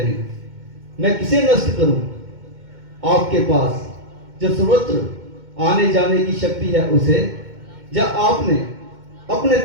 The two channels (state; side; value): late; left; 2.2 ms